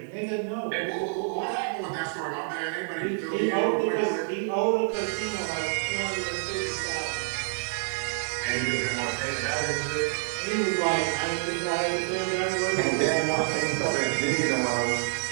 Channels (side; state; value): left; silent; digital silence